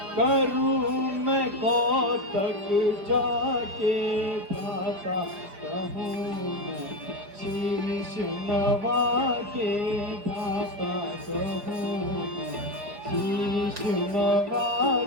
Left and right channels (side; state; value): left; late; 5.1 ms